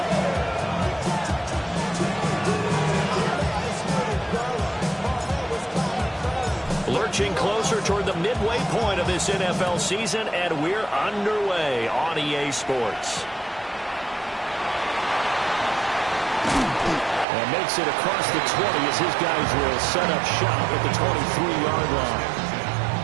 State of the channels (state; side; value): drops out; left; at 17.2 s